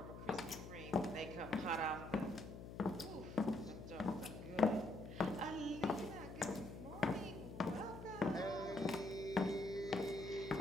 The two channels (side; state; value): left; noise; hum, 10 dB below the sound